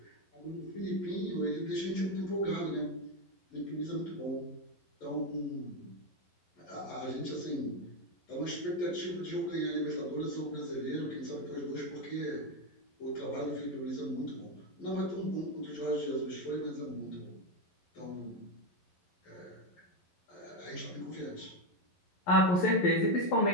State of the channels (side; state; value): right; late; 11 ms